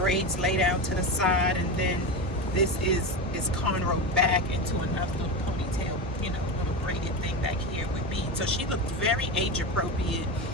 lay down to the side, and then this is cornrowed back into another little ponytail, little braided thing back here with beads. So she looked very age appropriate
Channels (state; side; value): normal; both; correlation 0.19